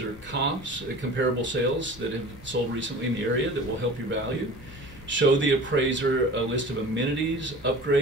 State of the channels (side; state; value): both; normal; correlation 0.40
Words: comps, comparable sales that have sold recently in the area that will help your value. Show the appraiser a list of amenities,